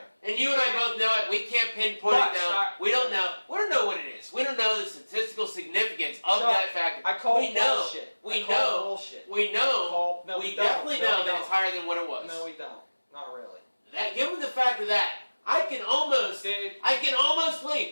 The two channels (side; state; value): both; inverted; correlation -1.00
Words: And you and I both know it. We can't pinpoint it down. We don't know. We don't know what it is. We don't know the statistical significance of that factor. I call it bullshit. We know. We know. We definitely know that it's higher than what it was. No, we don't. Not really. Given the fact of that, I can almost